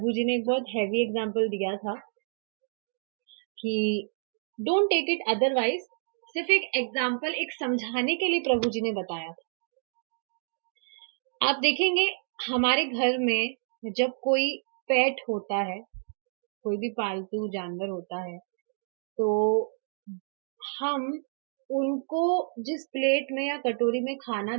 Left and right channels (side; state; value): left; silent; digital silence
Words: जी ने एक बहुत हैवी एग्जाम्पल दिया था कि डोंट टेक इट अदरवाइज। सिर्फ एक एग्जाम्पल, एक समझाने के लिए प्रभु जी ने बताया था। आप देखेंगे हमारे घर में जब कोई पेट होता है, कोई भी पालतू जानवर होता है, तो हम उनको जिस प्लेट में या कटोरी में खाना